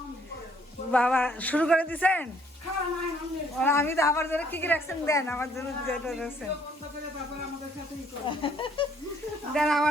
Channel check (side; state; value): both; normal; correlation 0.64